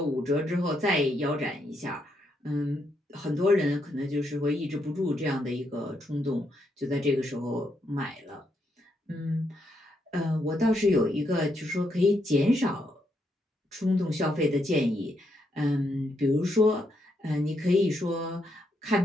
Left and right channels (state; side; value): normal; both; correlation 0.78